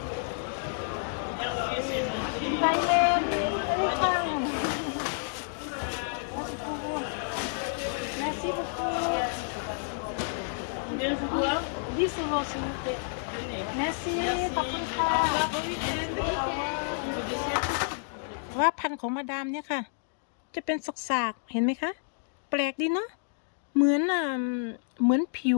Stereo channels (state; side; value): silent; right; digital silence